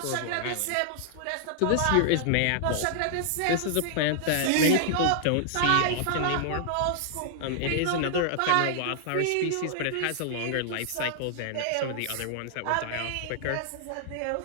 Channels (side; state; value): both; different; correlation -0.01